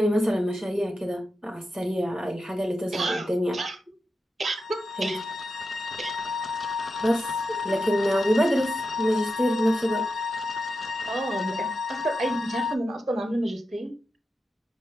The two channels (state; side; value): normal; both; correlation 0.89